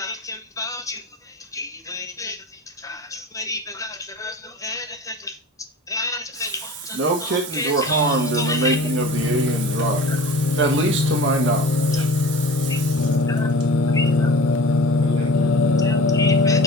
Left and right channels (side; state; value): both; normal; correlation 0.39